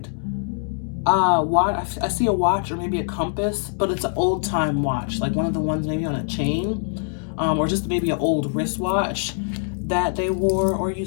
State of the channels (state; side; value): silent; right; digital silence